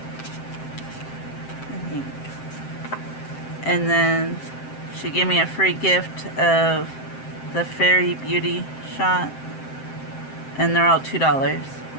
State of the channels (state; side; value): late; right; 7.7 ms